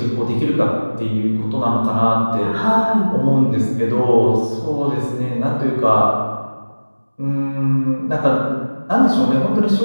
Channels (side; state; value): both; inverted; correlation -1.00